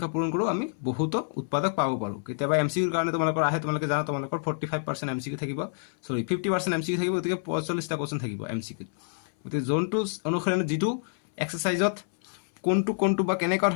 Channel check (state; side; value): silent; right; 59 dB below the other